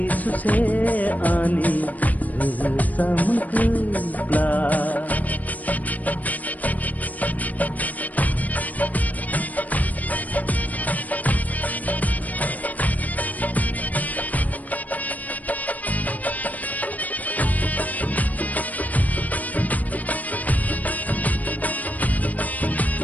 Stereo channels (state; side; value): late; right; 0.076 ms